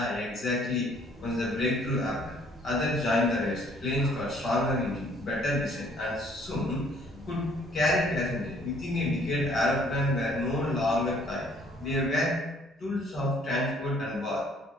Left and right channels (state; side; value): normal; both; correlation 0.60